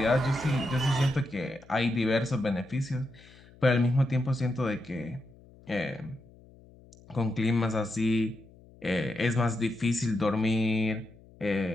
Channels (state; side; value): noise; left; hum, 24 dB below the sound